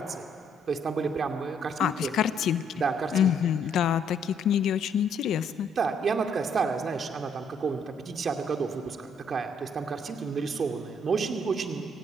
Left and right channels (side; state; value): both; normal; correlation 0.68